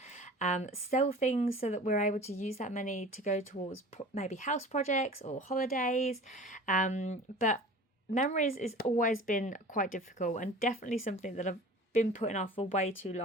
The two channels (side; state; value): both; normal; correlation 0.40